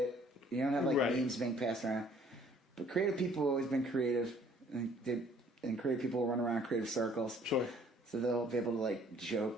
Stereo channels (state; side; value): normal; both; correlation 0.58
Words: you don't have memes being passed around. But creative people have always been creative, and creative people run around creative circles. Sure. So they'll be able to